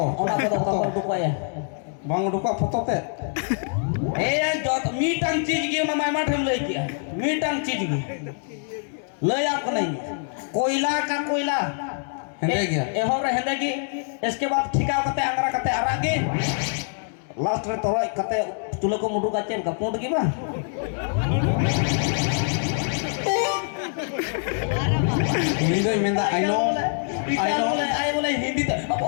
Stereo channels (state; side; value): silent; right; 62 dB below the other